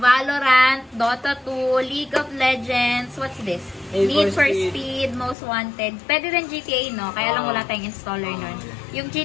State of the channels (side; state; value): right; drops out; at 5.4 s